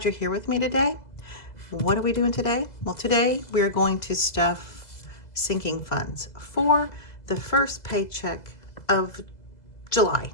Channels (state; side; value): late; right; 2.0 ms